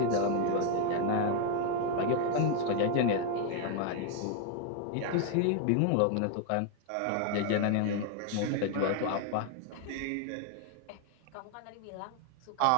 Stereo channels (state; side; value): different; both; correlation 0.00